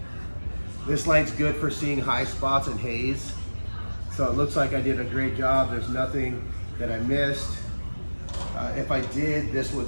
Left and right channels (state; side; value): inverted; both; correlation -1.00